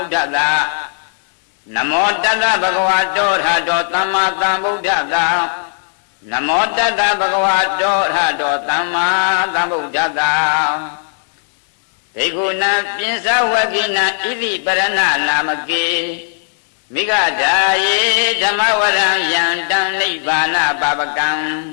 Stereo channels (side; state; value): right; silent; digital silence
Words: ဒ္ဓတ္တနမောတတ္တဗုဒ္ဓဝါတောထတောသမ္မာသမ္ဗုဒ္ဓတ္တနမောတတ္တဗုဒ္ဓဝါတောထတောသမ္မာသမ္ဗုဒ္ဓတ္တဒိက္ခုနံပိစဝကိနံဣတိပရဏနာမကေမိဂဓာယေဓမ္မဝရံယံတံနိဗ္ဗာနပါပကံ